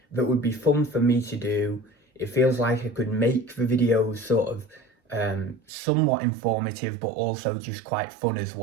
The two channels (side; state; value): left; drops out; at 5.6 s